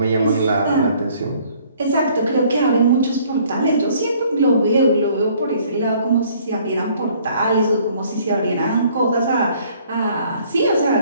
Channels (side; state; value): both; inverted; correlation -0.60